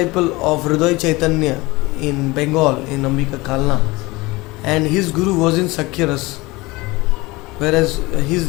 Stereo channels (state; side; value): quieter; right; 22.2 dB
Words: of Hriday Chaitanya in Bengal, in Ambika Kalna, and his guru was in Sakhya-ras, whereas